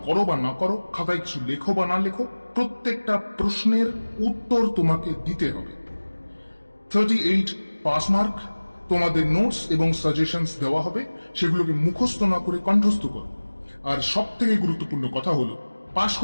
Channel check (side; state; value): both; inverted; correlation -1.00